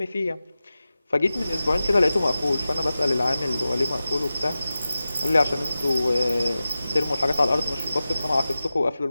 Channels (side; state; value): both; inverted; correlation -0.94